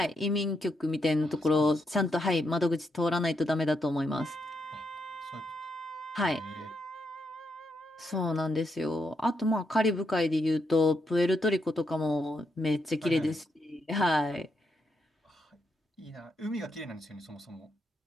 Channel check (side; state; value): both; normal; correlation 0.80